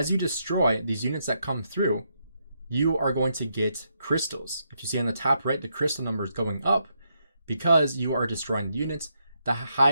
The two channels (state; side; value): inverted; both; correlation -0.79